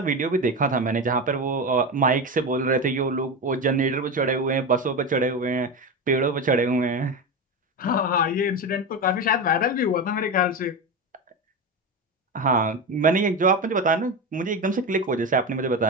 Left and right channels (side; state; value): both; normal; correlation 0.19